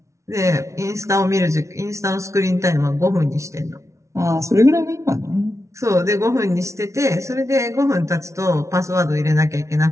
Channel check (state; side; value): late; left; 0.14 ms